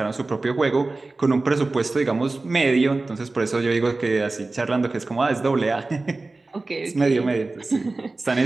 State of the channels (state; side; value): quieter; left; 3.3 dB